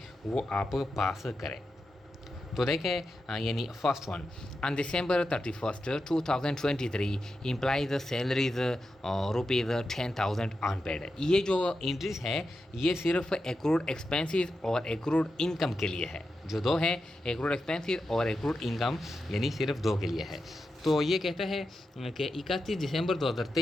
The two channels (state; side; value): normal; both; correlation 0.89